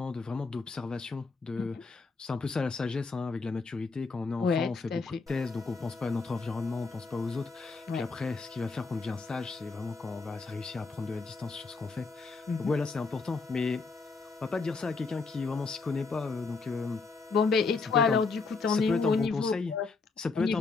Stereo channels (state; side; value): quieter; right; 4.3 dB